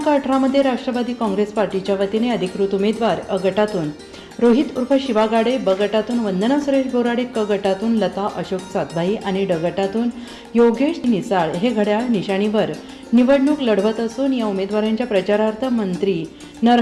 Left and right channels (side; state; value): both; identical; correlation 1.00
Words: 18 मध्ये राष्ट्रवादी काँग्रेस पार्टीच्या वतीने अधिकृत उमेदवार अ गटातून रोहित उर्फ शिवा गाडे, ब गटातून वंदना सुरेश बोराडे, क गटातून लता अशोक सातभाई आणि ड गटातून योगेश निसाळ हे घड्याळ निशाणीवर निवडणूक लढवत असून या उमेदवारांच्या प्रचारार्थ मंत्री